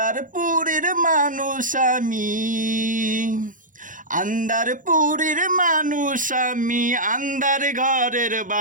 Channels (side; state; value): left; late; 0.38 ms